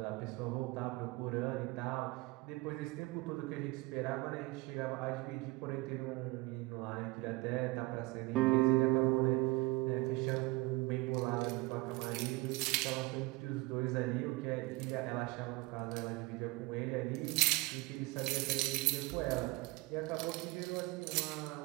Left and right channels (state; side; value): quieter; left; 22.8 dB